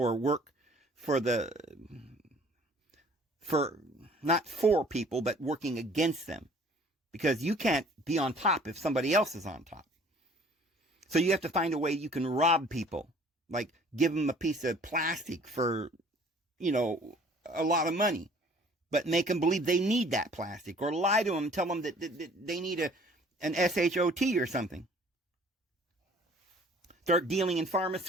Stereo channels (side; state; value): both; normal; correlation 0.53